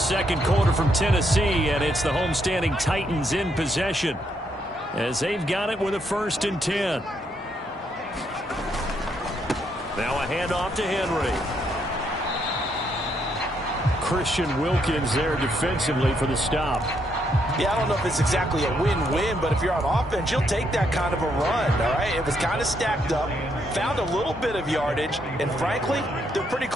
quarter from Tennessee, and it's the homestanding Titans in possession as they've got it with a 1st and 10. Now a handoff to Henry. Christian Wilkins there defensively for the stop. Yeah, I don't know if it's exactly a win-win, but if you're on offense, you'll take that kind of a run, all right? It was kind of stacked up, found a little bit of yardage, and frankly, they're pretty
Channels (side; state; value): both; normal; correlation 0.75